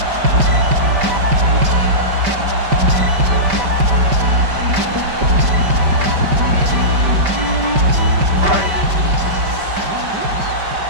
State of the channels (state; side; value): late; left; 5.1 ms